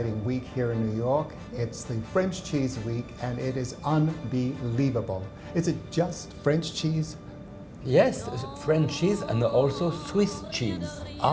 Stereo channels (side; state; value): both; identical; correlation 1.00